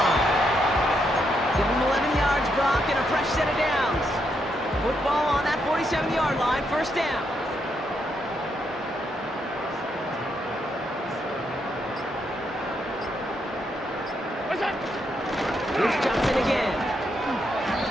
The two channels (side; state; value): both; normal; correlation 0.79